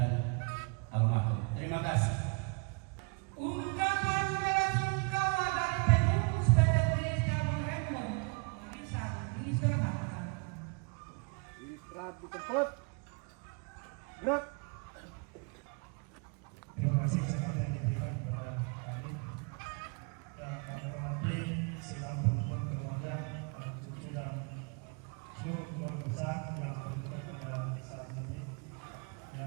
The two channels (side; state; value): left; quieter; 34.3 dB